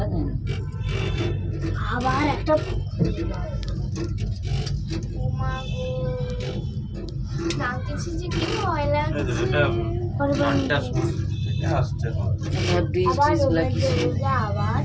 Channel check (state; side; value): identical; both; correlation 1.00